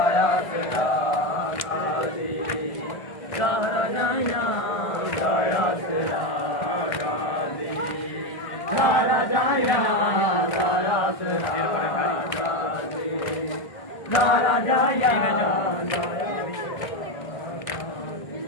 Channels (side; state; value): right; late; 1.6 ms